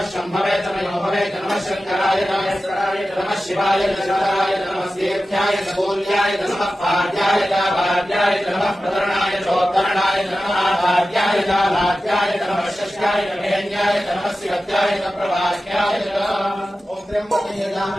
शम्भवे तमयोभवे नमः शंकराय नमस्काराय नमः शिवाय नमस्काराय नमः तीर्थ्याय नमोल्याय नमः पाद्याय भाद्याय नमः प्रतरणाय चोत्तरणाय नमः आद्याय लाद्याय नमः षष्ठ्याय नभेन्याय नमः शिवत्याय प्रभाष्याय ओम त्र्यंबकं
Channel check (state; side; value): normal; both; correlation 0.94